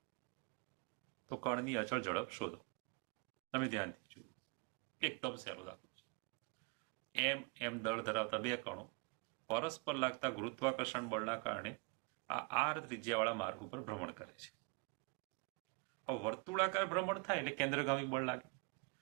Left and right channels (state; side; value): quieter; left; 31.2 dB